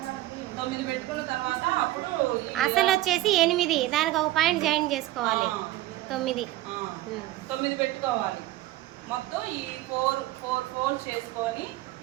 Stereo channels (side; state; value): left; quieter; 16.3 dB